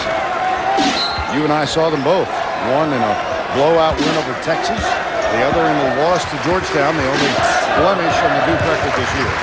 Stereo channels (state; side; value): identical; both; correlation 1.00